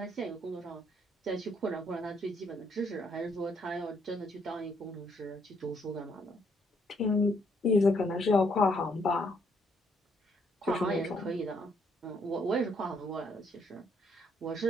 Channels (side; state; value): both; normal; correlation 0.70